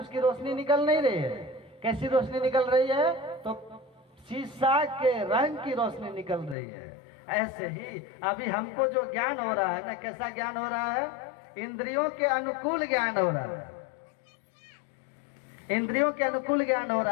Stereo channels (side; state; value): right; drops out; at 6.6 s